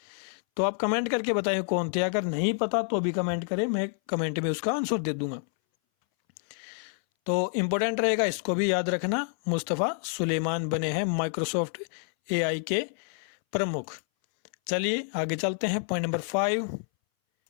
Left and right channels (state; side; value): silent; right; 59 dB below the other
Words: तो आप कमेंट करके बताएं कौन थे, अगर नहीं पता तो भी कमेंट करें, मैं कमेंट में उसका आंसर दे दूंगा। तो इम्पोर्टेंट रहेगा, इसको भी याद रखना। मुस्तफ़ा सुलेमान बने हैं माइक्रोसॉफ्ट एआई के प्रमुख। चलिए आगे चलते हैं, पॉइंट नंबर 5।